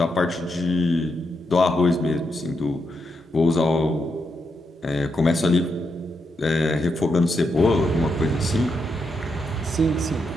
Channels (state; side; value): normal; both; correlation 0.82